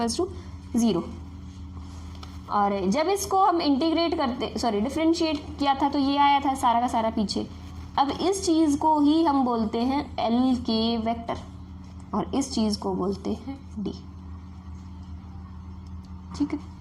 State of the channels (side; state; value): both; identical; correlation 1.00